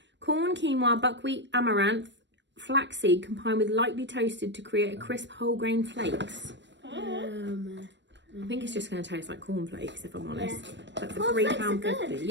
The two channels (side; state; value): left; late; 0.53 ms